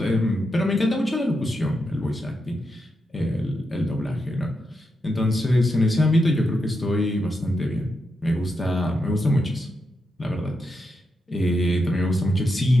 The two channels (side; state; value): both; normal; correlation 0.85